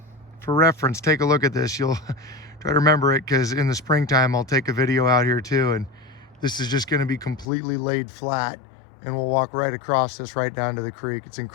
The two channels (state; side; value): drops out; right; at 7.5 s